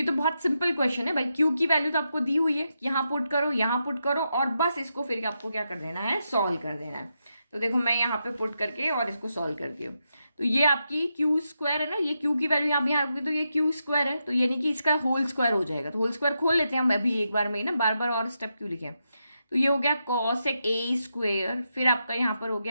तो बहुत सिंपल क्वेश्चन है भाई, क्यू की वैल्यू तो आपको दी हुई है, यहाँ पुट करो, यहाँ पुट करो, और बस इसको फिर आपको क्या कर देना है, सॉल्व कर देना है। तो देखो मैं यहाँ पे पुट करके और इसको सॉल्व कर दिया, तो ये आपकी क्यू स्क्वायर है ना, ये क्यू की वैल्यू यहाँ पे यहाँ रखोगे तो ये क्यू स्क्वायर है, तो यानी कि इसका होल स्क्वायर हो जाएगा, तो होल स्क्वायर खोल लेते हैं हम अभी एक बार में ही ना, बार बार और स्टेप क्यों लिखे। तो ये हो गया कॉसेक ए स्क्वायर, फिर आपका यहाँ पर हो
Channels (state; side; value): inverted; both; correlation -0.85